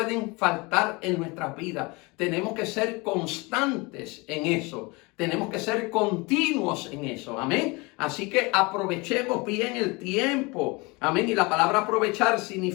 faltar en nuestras vidas. Tenemos que ser constantes en eso. Tenemos que ser continuos en eso, amén. Así que aprovechemos bien el tiempo, amén. Y la palabra aprovechar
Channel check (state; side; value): quieter; right; 26.1 dB